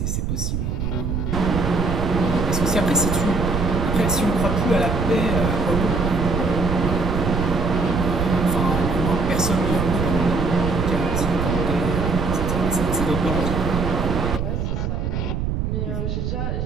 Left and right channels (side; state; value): right; noise; rumble, 1 dB below the sound